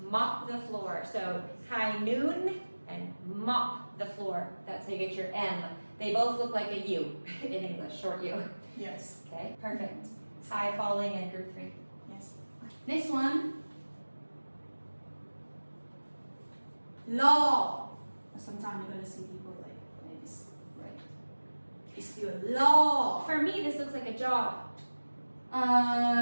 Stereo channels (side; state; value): both; inverted; correlation -1.00